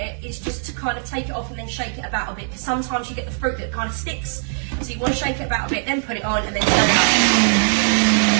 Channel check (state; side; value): silent; left; digital silence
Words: is just to kind of take it off and then shake it about a bit, because sometimes you get the fruit that kind of sticks, so you want to shake it about a bit, then put it on and then turn it up.